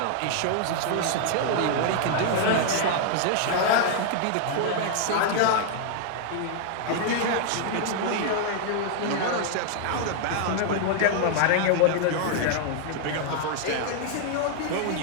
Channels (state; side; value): different; both; correlation -0.01